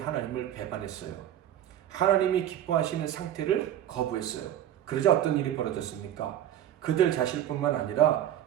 배반했어요. 하나님이 기뻐하시는 상태를 거부했어요. 그러자 어떤 일이 벌어졌습니까? 그들 자신뿐만 아니라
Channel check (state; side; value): quieter; left; 11.5 dB